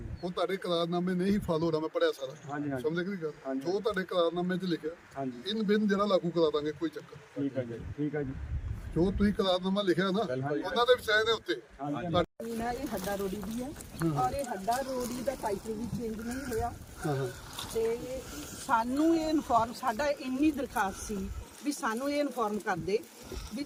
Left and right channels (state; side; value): identical; both; correlation 1.00